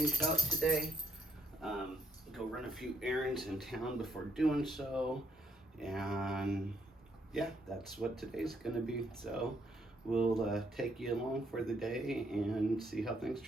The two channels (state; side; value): normal; both; correlation 0.74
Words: out today. Go run a few errands in town before doing so. And yeah, that's what today's gonna be. So we'll take you along for the day and see how things